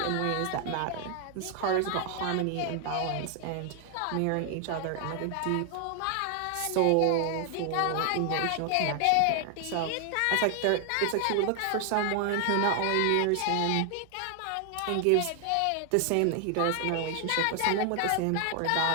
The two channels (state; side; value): different; both; correlation 0.00